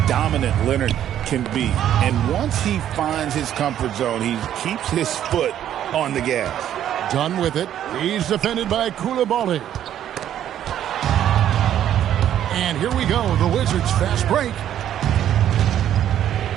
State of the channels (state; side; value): quieter; left; 10.9 dB